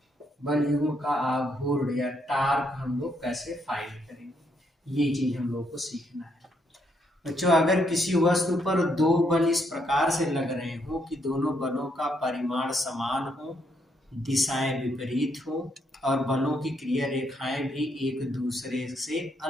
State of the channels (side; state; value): both; normal; correlation 0.74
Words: बल युग्म का आघूर्ण या टार्क हम लोग कैसे फाइंड करेंगे, ये चीज हम लोग को सीखना है। बच्चों, अगर किसी वस्तु पर दो बल इस प्रकार से लग रहे हो कि दोनों बलों का परिमाण समान हो, दिशाएं विपरीत हो और बलों की क्रिया रेखाएं भी एक दूसरे से